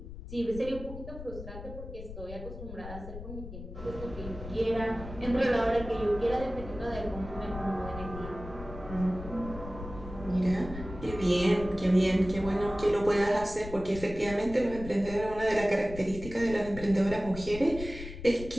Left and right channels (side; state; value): left; noise; rumble, 11 dB below the sound